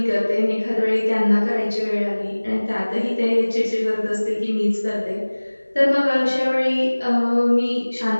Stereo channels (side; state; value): both; inverted; correlation -1.00